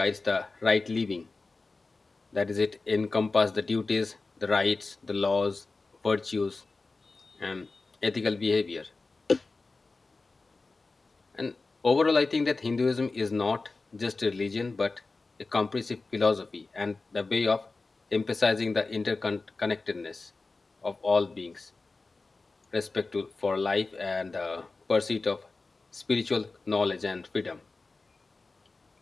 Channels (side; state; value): right; quieter; 3.7 dB